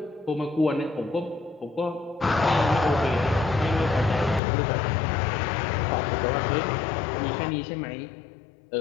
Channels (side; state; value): right; drops out; at 4.4 s